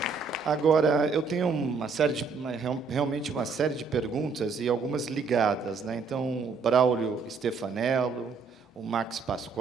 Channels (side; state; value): left; quieter; 4.9 dB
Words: Agora, eu tenho realmente uma série de perguntas e algumas ligadas, né? Então, o Braulio Stefanello, o Max